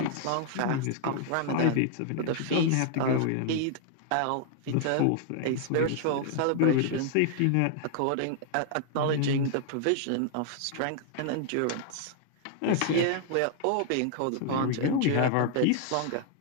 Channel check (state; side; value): different; both; correlation 0.00